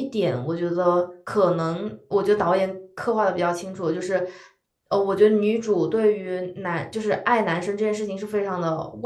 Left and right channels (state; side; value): identical; both; correlation 1.00